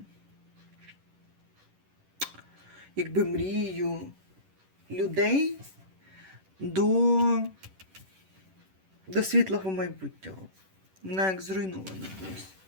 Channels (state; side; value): late; left; 11 ms